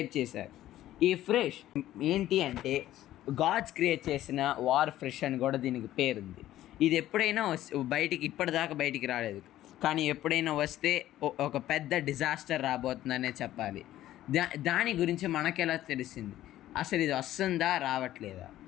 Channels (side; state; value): right; quieter; 13.7 dB